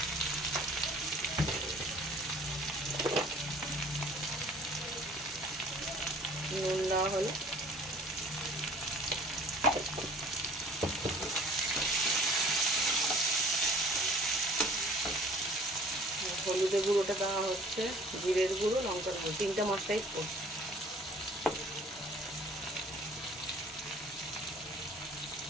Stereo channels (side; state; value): both; normal; correlation 0.51